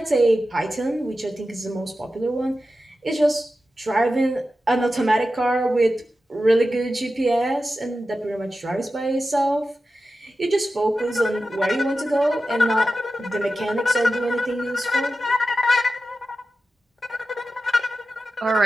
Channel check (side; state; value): both; normal; correlation 0.92